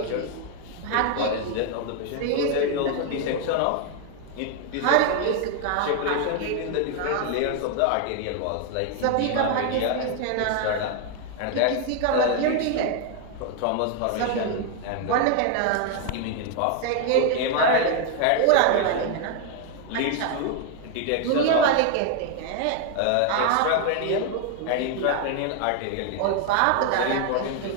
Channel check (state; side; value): different; both; correlation 0.01